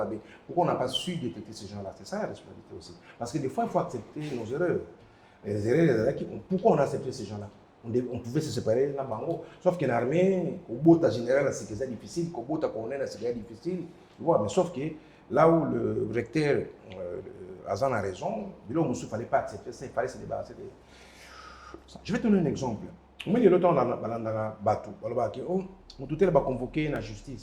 Pourquoi on n'a pas su détecter ces gens-là? C'est ça la responsabilité aussi. Parce que des fois, il faut accepter nos erreurs. Les erreurs, pourquoi on a accepté ces gens-là? On pouvait se séparer là-bas. Sauf qu'en armée, au bout de général, c'est difficile, qu'au bout de colonel, c'est difficile. Mais sauf que là où le recteur Azan a raison, il ne fallait pas accepter ça, il fallait se débarrasser de ça. Je vais te donner un exemple. Au milieu de temps, on a battu. On a convoqué la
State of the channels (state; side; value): identical; both; correlation 1.00